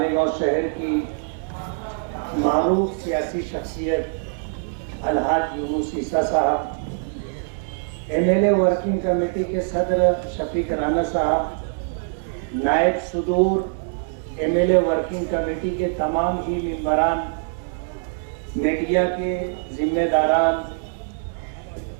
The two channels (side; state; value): left; silent; digital silence